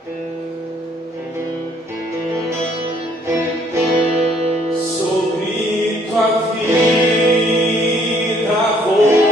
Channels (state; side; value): normal; both; correlation 0.63